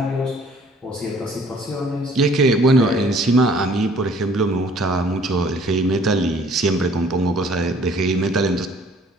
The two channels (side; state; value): both; normal; correlation 0.57